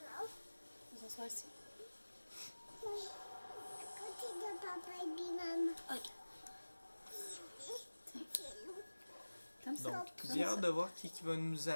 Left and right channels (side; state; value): both; inverted; correlation -1.00